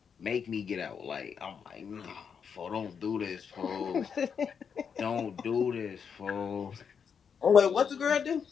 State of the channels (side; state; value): right; quieter; 6.8 dB